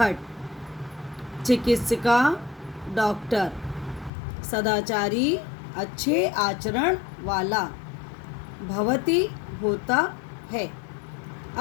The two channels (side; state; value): right; drops out; at 4.1 s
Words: चिकित्सिका डॉक्टर, सदाचारी अच्छे आचरण वाला, भवती होता है,